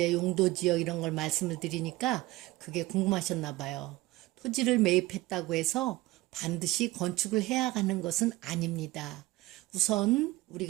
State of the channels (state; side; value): quieter; left; 19.1 dB